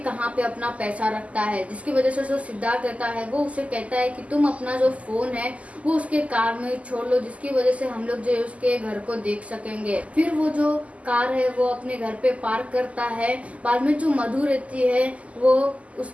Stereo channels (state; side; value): late; left; 0.067 ms